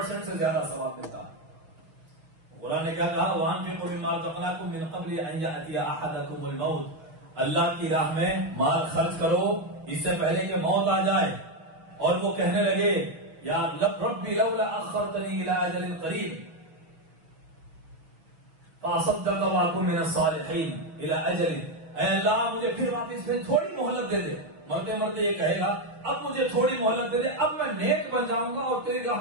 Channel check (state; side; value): late; left; 6.2 ms